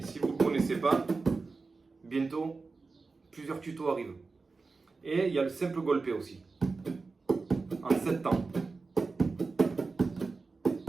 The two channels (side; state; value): left; quieter; 4.1 dB